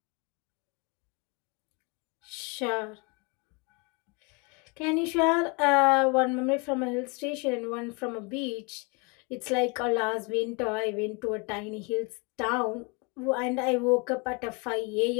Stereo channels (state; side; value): quieter; right; 31.0 dB